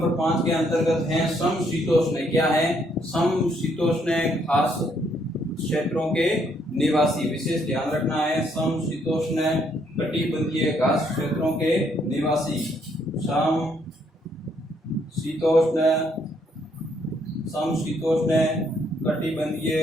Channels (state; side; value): normal; both; correlation 0.70